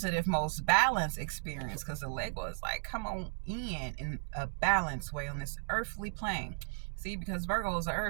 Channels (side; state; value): left; silent; digital silence